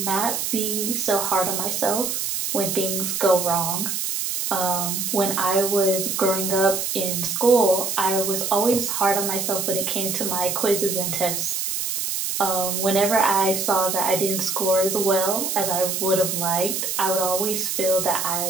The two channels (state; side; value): noise; right; hiss, 2 dB below the sound